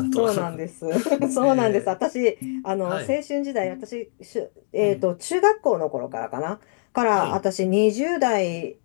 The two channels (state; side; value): silent; right; digital silence